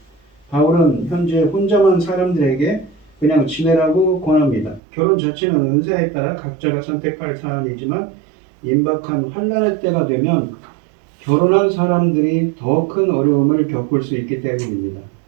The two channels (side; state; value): left; drops out; at 4.8 s